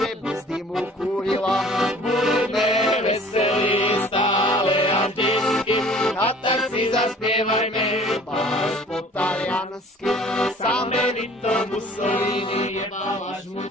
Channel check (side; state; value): both; normal; correlation 0.50